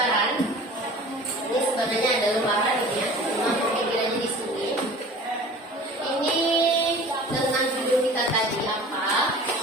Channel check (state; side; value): normal; both; correlation 0.42